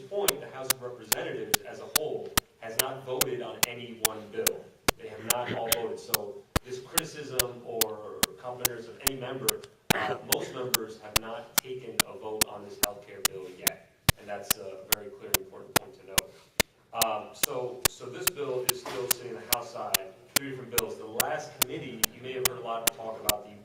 the House of Representatives as a whole has not voted on any one bill. They have not all voted. So this criticism or complaints of any member, most members have not taken a vote on this health care bill yet. And that's a very clear and important point to note. So this bill is still sitting on the House side, 3 different bills. The last committee, you may have heard a lot of talk about the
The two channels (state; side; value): identical; both; correlation 1.00